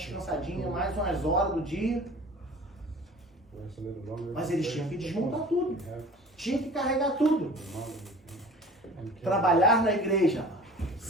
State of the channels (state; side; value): normal; both; correlation 0.42